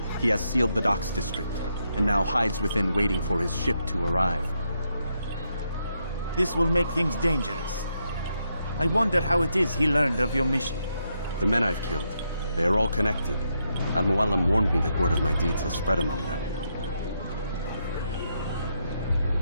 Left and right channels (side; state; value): both; inverted; correlation -0.80